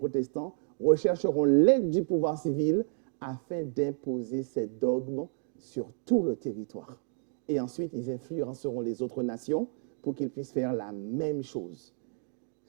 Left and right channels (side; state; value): left; silent; digital silence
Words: rechercheront l'aide du pouvoir civil afin d'imposer ces dogmes sur tout le territoire. Et ensuite, ils influenceront les autres nations pour qu'ils puissent faire la même chose.